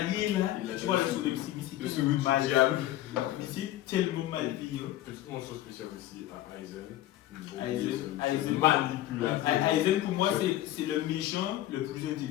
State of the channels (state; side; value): quieter; right; 14.3 dB